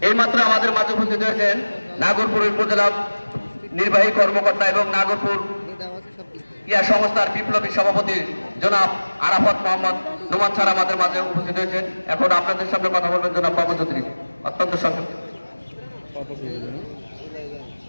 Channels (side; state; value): both; inverted; correlation -1.00